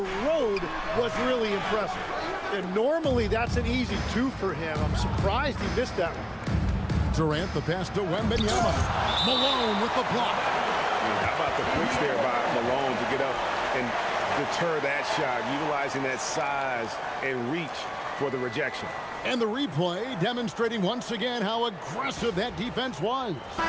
was really impressive. And normally that's an easy 2 for him. I'm surprised he missed that one. Durant, the pass to Wembanyama. Malone with the block. How about the push there by Malone to get up and deter that shot, utilizing that size and reach for the rejection. And the replay demonstrating once again how aggressive that defense was.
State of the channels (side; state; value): both; identical; correlation 1.00